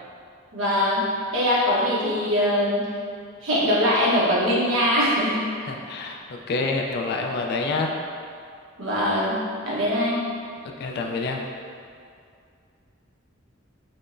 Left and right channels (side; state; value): both; normal; correlation 0.08